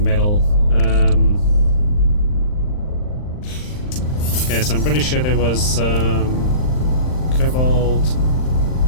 Okay, so I'm pretty sure there was cobalt,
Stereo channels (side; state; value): right; late; 39 ms